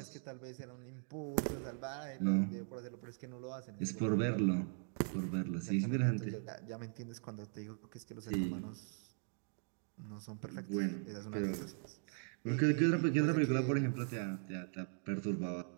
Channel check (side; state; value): left; silent; 51 dB below the other